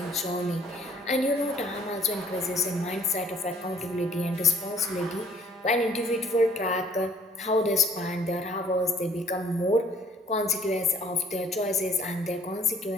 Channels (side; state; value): both; normal; correlation 0.57